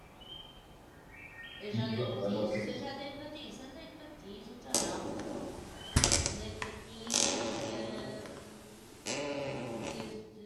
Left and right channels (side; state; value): both; identical; correlation 1.00